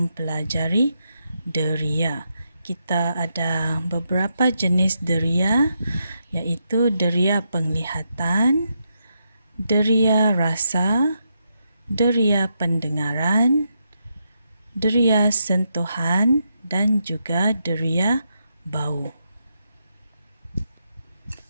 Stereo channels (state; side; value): inverted; both; correlation -0.82